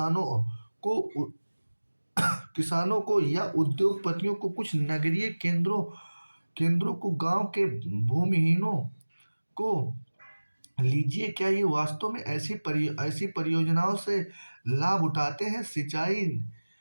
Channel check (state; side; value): inverted; both; correlation -1.00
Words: किसानों को या उद्योगपतियों को, कुछ नगरीय केंद्रों को, गांव के भूमिहीनों को। लीजिए, क्या ये वास्तव में ऐसी परियोजनाओं से लाभ उठाते हैं? सिंचाई